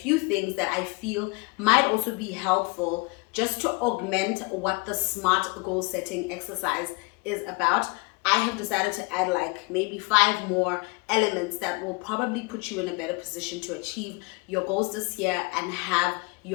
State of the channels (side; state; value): right; quieter; 27.9 dB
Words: things that I feel might also be helpful just to augment what the SMART goal setting exercise is about. I have decided to add like maybe 5 more elements that will probably put you in a better position to achieve your goals this year and have